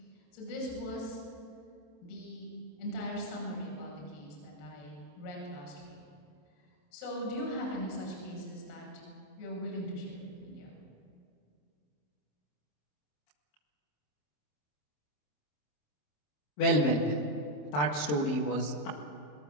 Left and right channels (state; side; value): late; right; 27 ms